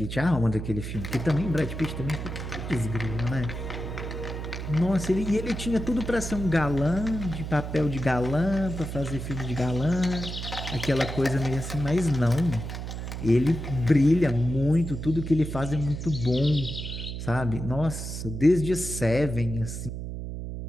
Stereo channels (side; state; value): right; noise; hum, 6 dB below the sound